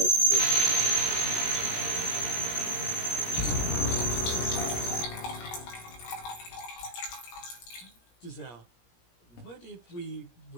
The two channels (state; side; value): late; right; 17 ms